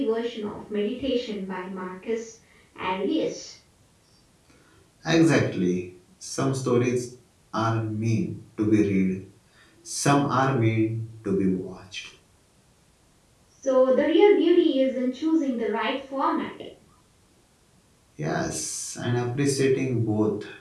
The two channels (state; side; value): identical; both; correlation 1.00